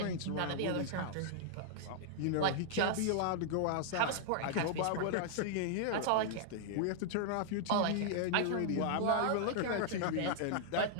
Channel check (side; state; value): both; different; correlation -0.01